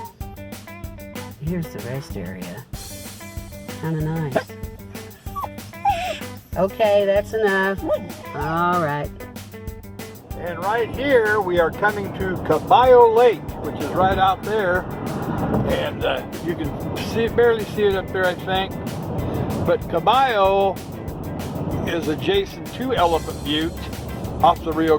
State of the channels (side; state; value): both; identical; correlation 1.00